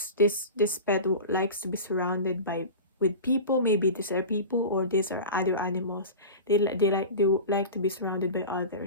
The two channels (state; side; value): inverted; both; correlation -0.31